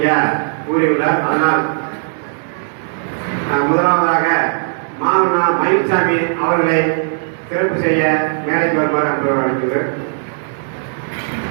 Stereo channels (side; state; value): left; silent; digital silence